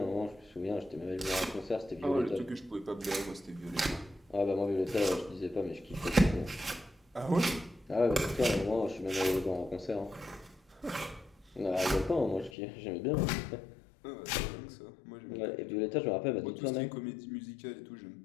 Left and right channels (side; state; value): right; drops out; at 12.6 s